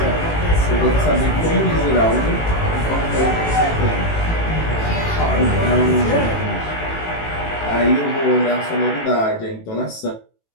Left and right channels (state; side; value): late; right; 18 ms